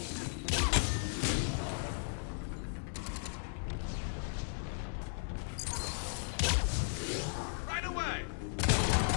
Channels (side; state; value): right; silent; 54 dB below the other